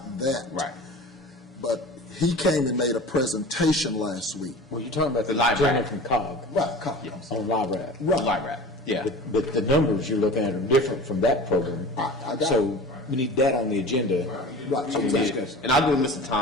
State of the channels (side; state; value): both; normal; correlation 0.38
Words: that. Right. But he came and made a presentation last week. Well, you're talking about The the LIRAP. gentleman from COG. Right, COG. On LIRAP. Right. LIRAP, yeah. But the numbers you're looking at are different from that program. I got So we need that on the agenda. Right. So we Yeah. discuss. And I'll go with Mr.